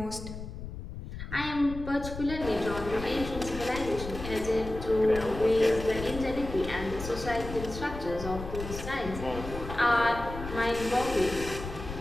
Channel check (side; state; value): left; noise; rumble, 9 dB below the sound